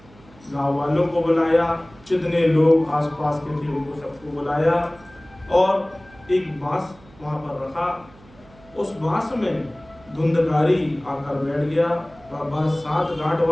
गांव वालों को बुलाया, जितने लोग आसपास के थे उनको सबको बुलाया और एक बांस वहां पर रखा। उस बांस में धुंधकारी आकर बैठ गया। वह बांस 7 गांठ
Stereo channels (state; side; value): noise; right; hum, 25 dB below the sound